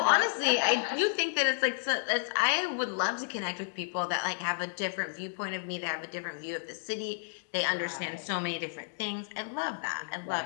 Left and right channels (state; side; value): silent; right; digital silence